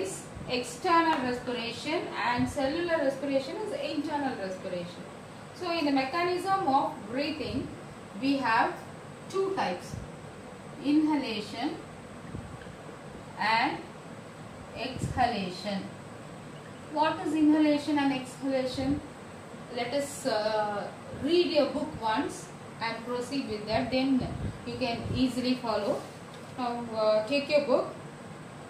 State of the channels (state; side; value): identical; both; correlation 1.00